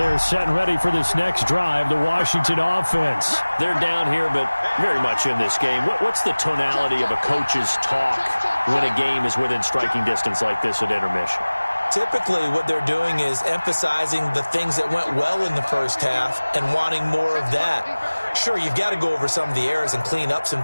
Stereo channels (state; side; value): inverted; both; correlation -1.00